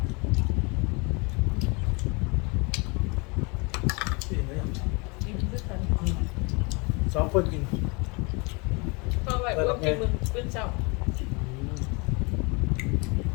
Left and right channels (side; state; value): right; quieter; 29.8 dB